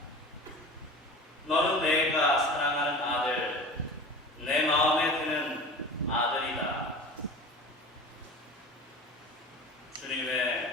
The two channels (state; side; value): normal; both; correlation 0.36